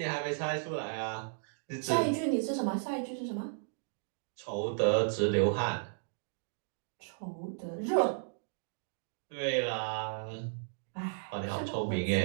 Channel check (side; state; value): left; silent; digital silence